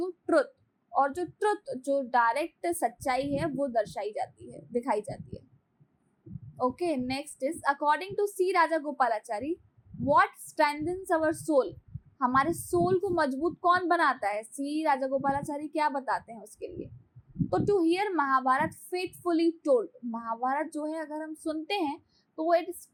ट्रुथ, और जो ट्रुथ जो डायरेक्ट सच्चाई है वो दर्शाई जाती है, दिखाई जाती है. Okay, next is according to C Raja Gopalachari what strengthens our soul. हमारे सोल को मजबूत कौन बनाता है? सी राजा गोपालाचारी क्या बताते हैं उसके लिए? तो to hear Mahabharat faithfully told. Mahabharat जो है अगर हम सुनते हैं तो इट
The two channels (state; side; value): identical; both; correlation 1.00